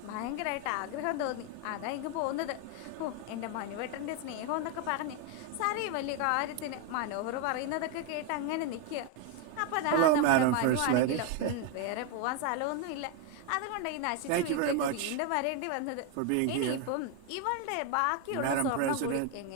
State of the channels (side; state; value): both; different; correlation 0.01